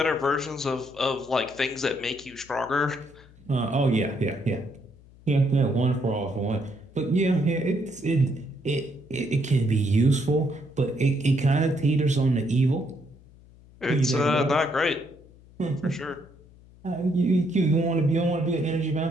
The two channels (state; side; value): noise; left; hum, 24 dB below the sound